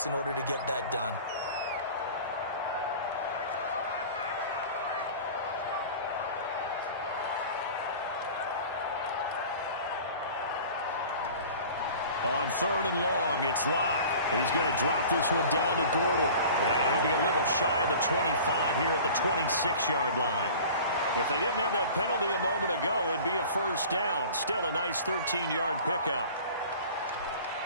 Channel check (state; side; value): inverted; both; correlation -0.42